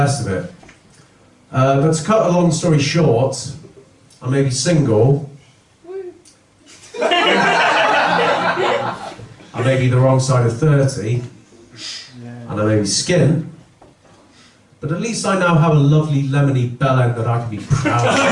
of it. But to cut a long story short, I may be single. I may be the wrong side of 30, and I may be skint, but at least I now have a lovely lemony bellend that I can be proud of.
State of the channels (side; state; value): both; identical; correlation 1.00